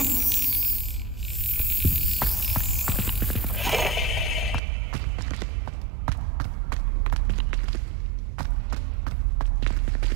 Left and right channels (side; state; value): left; drops out; at 4.6 s